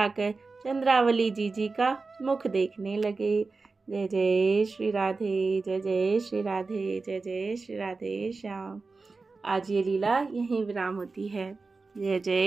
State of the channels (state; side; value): quieter; left; 4.0 dB